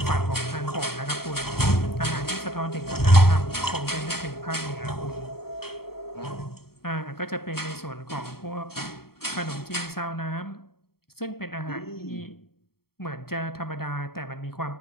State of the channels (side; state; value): right; late; 0.95 ms